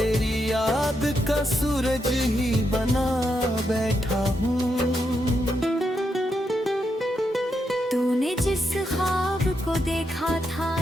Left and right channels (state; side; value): normal; both; correlation 0.82